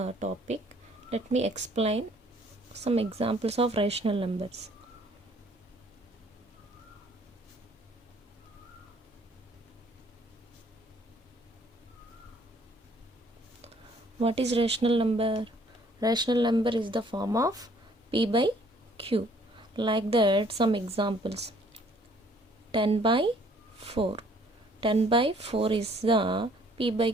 topic, let me explain some examples of rational numbers. What is rational number? Rational number is the form of P by Q. Like that, some examples. 10 by 4. 10 by 4 is the P by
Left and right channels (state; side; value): normal; both; correlation 0.60